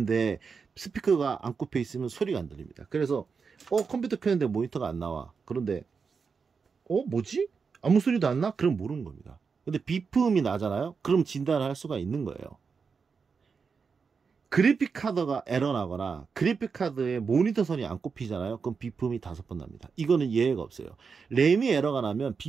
스피커가 안 꼽혀 있으면 소리가 안 들립니다. 그래서 컴퓨터 켰는데 모니터가 안 나와. 그런데 뭐지? 아무 소리도 안 나? 그럼 모르는 겁니다. 근데 비품이 나잖아요. 그럼 진단을 할 수가 있는 거예요. 그래픽카드가 에러 나거나 그래픽카드에 모니터 선이 안 꼽히잖아요. 그럼 비품이 5번 납니다. 이거는 예외가 없어요. 램이 에러가 나면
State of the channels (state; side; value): quieter; left; 5.5 dB